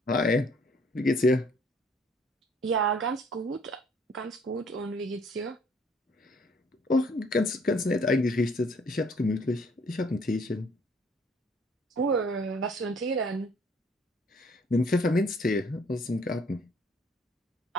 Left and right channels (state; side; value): normal; both; correlation 0.60